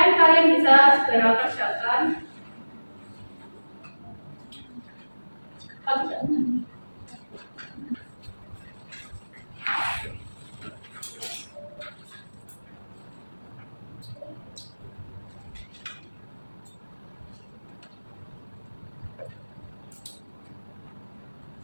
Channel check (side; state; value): both; inverted; correlation -1.00